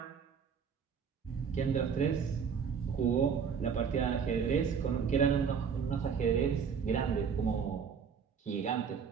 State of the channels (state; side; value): quieter; left; 6.6 dB